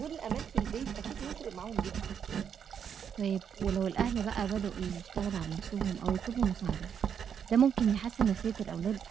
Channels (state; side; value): quieter; left; 7.8 dB